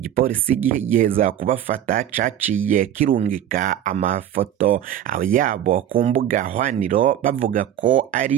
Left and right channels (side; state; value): left; quieter; 10.8 dB